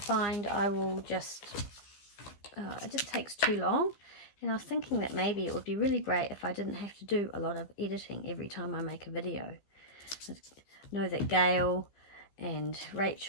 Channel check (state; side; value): late; right; 15 ms